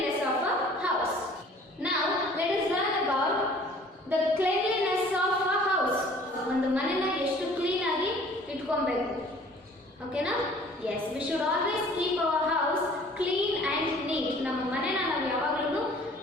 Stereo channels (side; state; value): both; normal; correlation 0.51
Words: of a house. Now let us learn about the cleanliness of a house. ಒಂದು ಮನೆನ ಎಷ್ಟು clean ಆಗಿ ಇಟ್ಕೊಬೇಕು. ಓಕೆನಾ? Yes, we should always keep our house clean and neat. ನಮ್ಮ ಮನೆನ ನಾವು ಯಾವಾಗಲೂ